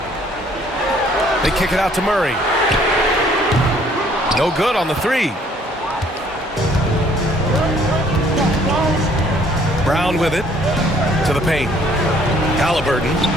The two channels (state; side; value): normal; both; correlation 0.61